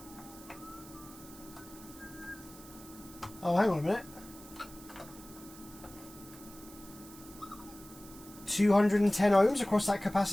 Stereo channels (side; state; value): right; noise; hiss, 18 dB below the sound